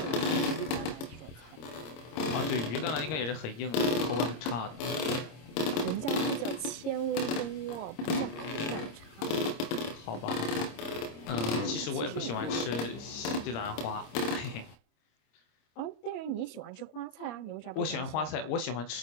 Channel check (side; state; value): right; late; 26 ms